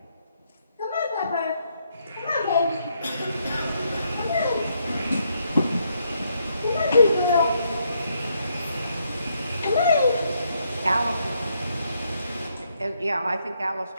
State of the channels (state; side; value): inverted; both; correlation -0.75